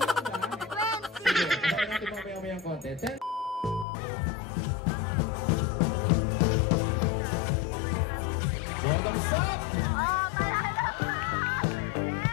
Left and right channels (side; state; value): right; drops out; at 3.9 s